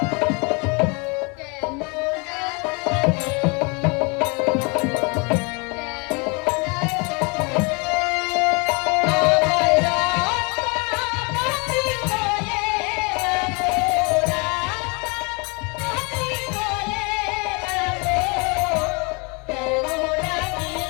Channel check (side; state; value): right; quieter; 30.8 dB